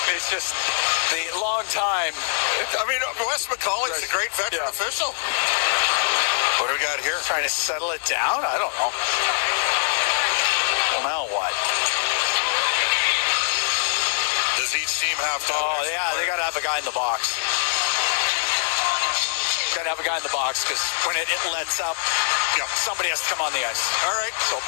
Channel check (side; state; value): right; silent; digital silence